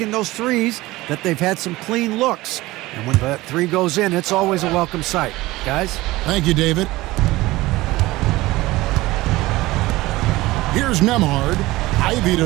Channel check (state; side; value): quieter; left; 19.0 dB